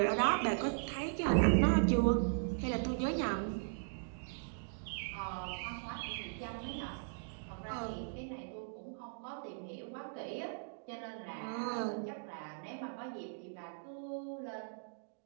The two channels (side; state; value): left; silent; digital silence